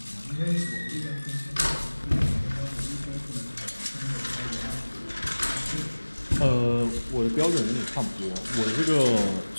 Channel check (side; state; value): both; inverted; correlation -1.00